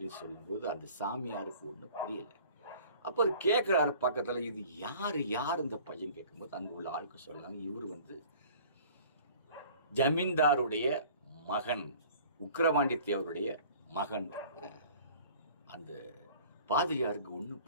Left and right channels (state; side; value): inverted; both; correlation -0.48